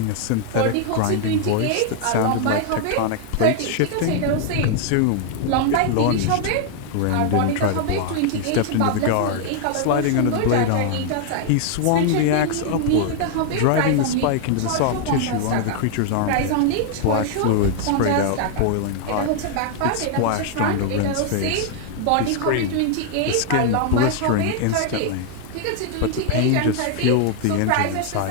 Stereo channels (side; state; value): both; different; correlation 0.00